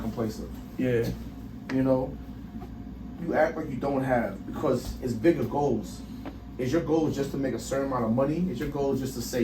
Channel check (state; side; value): identical; both; correlation 1.00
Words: complacent. Yeah. You know, you act like you don't have because it's bigger goals. Is your goal just to make a certain amount of money? Is your goal just to